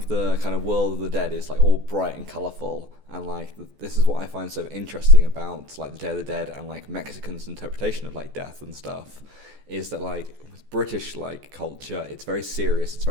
the kind of world of the dead is like all bright and colourful, and like this is what I find so interesting about like the Day of the Dead and like Mexicans' interpretation of like death and stuff, is that like with British like culture, it's very serious, it's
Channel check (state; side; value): late; left; 14 ms